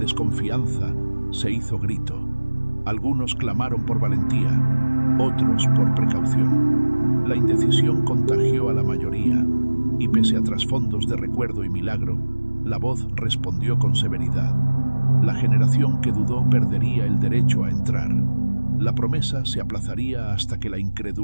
se hizo grito. Algunos clamaron por valentía, otros por precaución. La indecisión contagió a la mayoría, y pese a trasfondos de recuerdo y milagro, la voz respondió con severidad. La generación que dudó perdería el derecho a entrar. La promesa se aplazaría hasta que la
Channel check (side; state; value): both; inverted; correlation -1.00